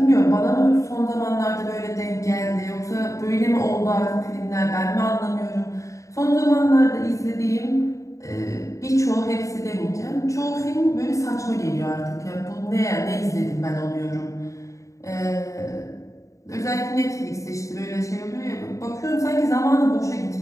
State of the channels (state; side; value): late; right; 0.15 ms